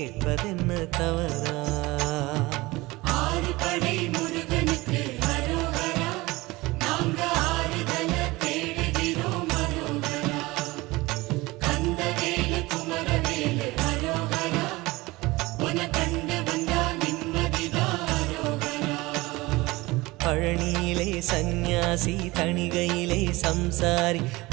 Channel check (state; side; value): quieter; left; 21.3 dB